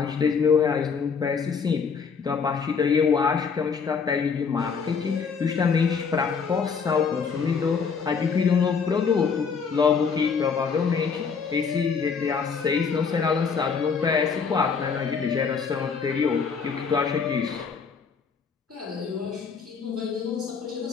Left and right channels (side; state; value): right; quieter; 5.8 dB